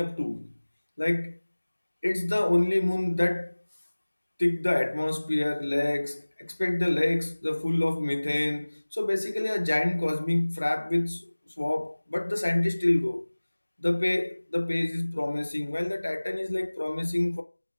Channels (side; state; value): both; inverted; correlation -1.00